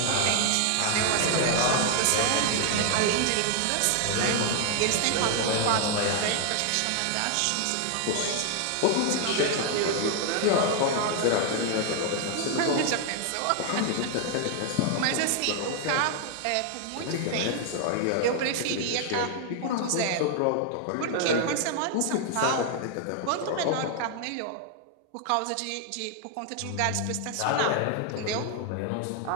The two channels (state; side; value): different; both; correlation 0.00